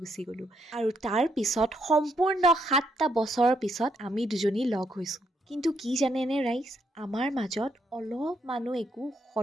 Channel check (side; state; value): both; normal; correlation 0.75